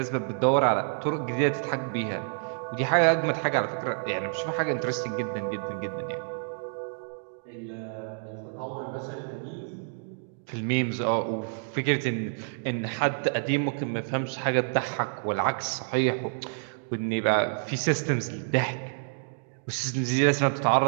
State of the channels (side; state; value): left; silent; digital silence